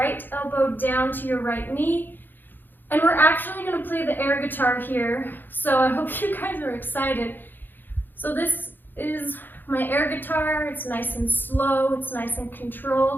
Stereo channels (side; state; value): right; late; 0.092 ms